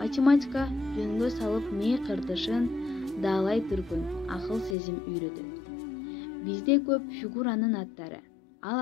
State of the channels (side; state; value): right; drops out; at 4.8 s